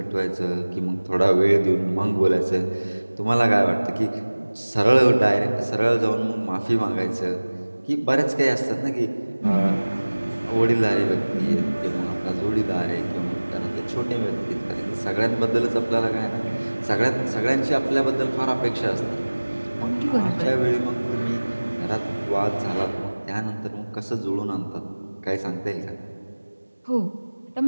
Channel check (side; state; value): both; inverted; correlation -1.00